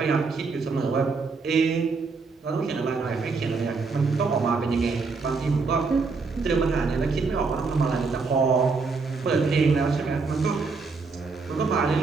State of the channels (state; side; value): quieter; left; 4.4 dB